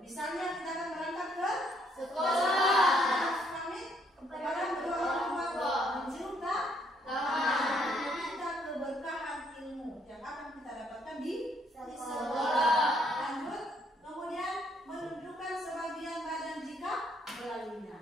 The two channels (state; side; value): normal; both; correlation 0.69